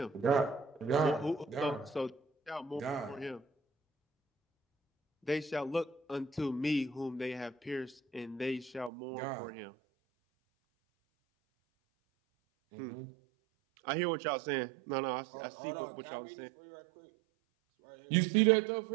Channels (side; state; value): left; drops out; at 8.9 s